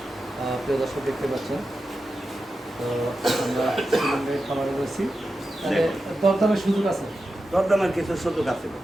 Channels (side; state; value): both; normal; correlation 0.91